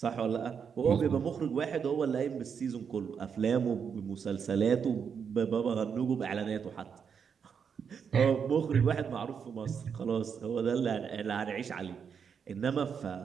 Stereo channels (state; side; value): quieter; left; 6.8 dB